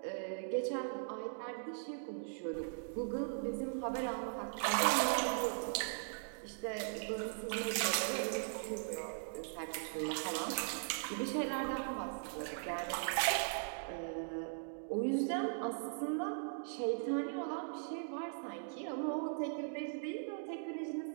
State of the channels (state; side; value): silent; left; digital silence